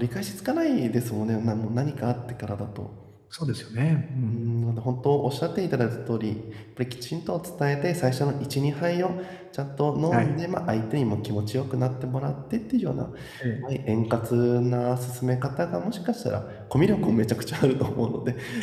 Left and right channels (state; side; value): identical; both; correlation 1.00